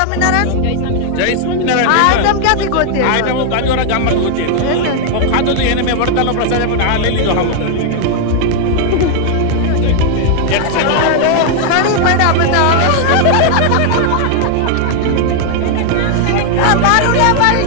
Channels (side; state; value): both; different; correlation 0.00